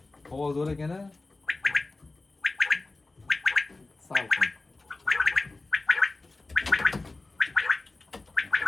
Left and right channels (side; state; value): right; quieter; 3.3 dB